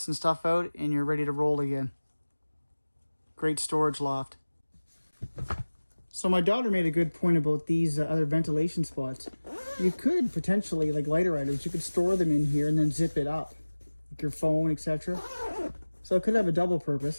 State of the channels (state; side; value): inverted; both; correlation -1.00